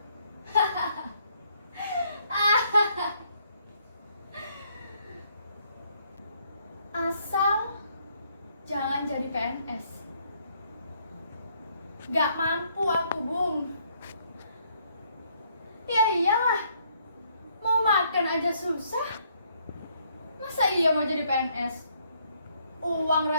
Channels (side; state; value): both; inverted; correlation -0.69